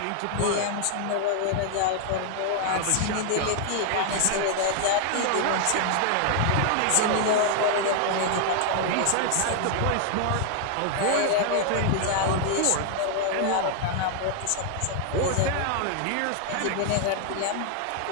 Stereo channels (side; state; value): both; different; correlation 0.00